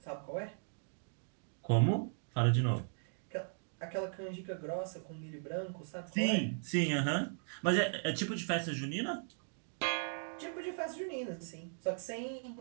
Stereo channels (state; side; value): silent; left; digital silence